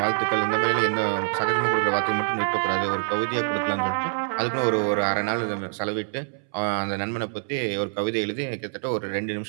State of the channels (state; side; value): silent; left; 62 dB below the other